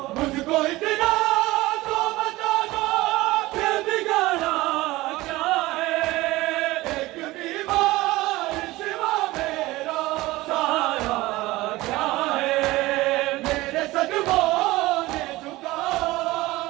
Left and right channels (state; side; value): quieter; left; 19.1 dB